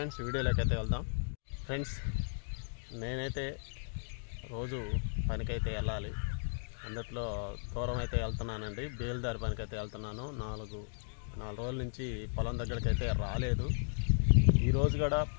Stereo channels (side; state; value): right; silent; digital silence